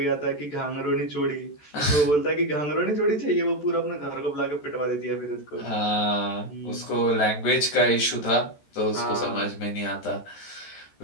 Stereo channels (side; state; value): right; late; 14 ms